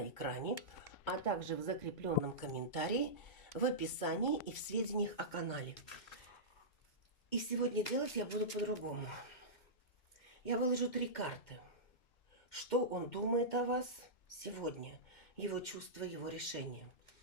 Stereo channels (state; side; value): late; right; 2.1 ms